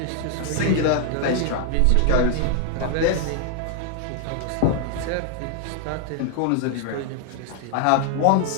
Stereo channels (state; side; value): different; both; correlation 0.00